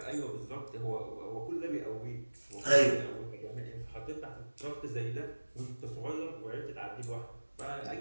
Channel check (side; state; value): both; inverted; correlation -1.00